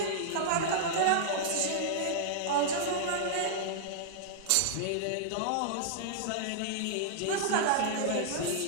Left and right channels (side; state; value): both; different; correlation -0.02